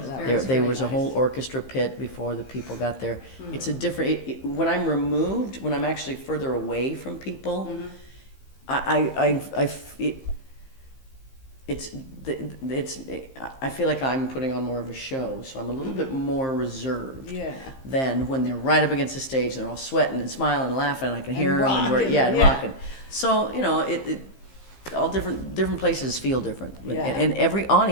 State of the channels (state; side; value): late; right; 15 ms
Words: that Very, was There very was a nice. whole orchestra pit before the people got there. It's a different. When I'm removed, when I'm actually further away from people, I feel like I'm putting on more of a show, so I'm a little bit more reserved. Yeah. Than when they're right up against the stage, they're all sweating and smiling and laughing, and I can hear them, and rocking, and yeah. rocking. So you know, all different places feel different, Yeah. and every